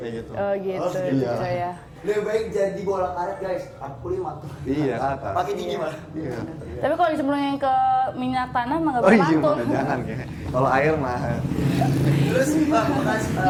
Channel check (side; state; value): both; identical; correlation 1.00